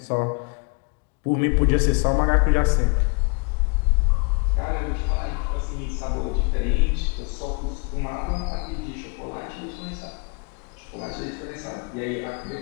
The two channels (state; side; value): quieter; right; 34.4 dB